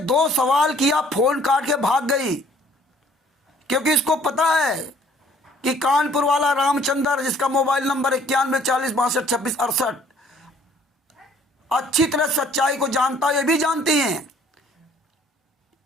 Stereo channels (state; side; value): normal; both; correlation 0.58